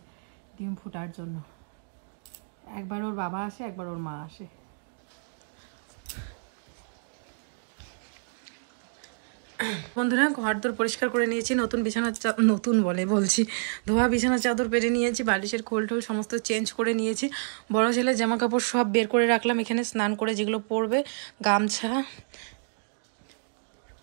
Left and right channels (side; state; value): left; silent; digital silence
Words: ডিম ফুটার জন্য। একবার ওর বাবা আসে, একবার ওর মা আসে। বন্ধুরা ঘরদোর পরিষ্কার করে নিয়েছি, নতুন বিছানার নতুন বলছি ধোয়া বিছানার চাদর পেরে নিয়েছি, বালিশের খোল টোল সমস্ত চেঞ্জ করে নিয়েছি। বড় ছেলের জামা কাপড় সব বের করে রাখলাম এখানে, স্নান করে যেগুলো পরবে, গামছা।